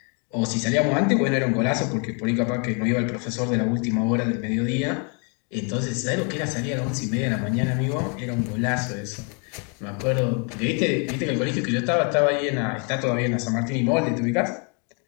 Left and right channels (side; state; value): right; quieter; 37.0 dB